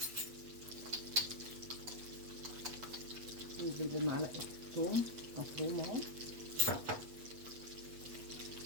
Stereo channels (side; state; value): left; late; 8.3 ms